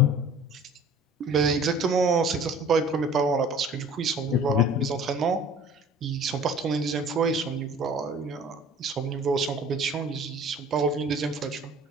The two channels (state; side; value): normal; both; correlation 0.47